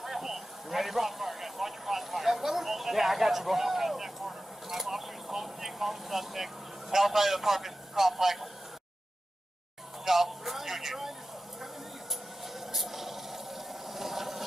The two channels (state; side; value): normal; both; correlation 0.93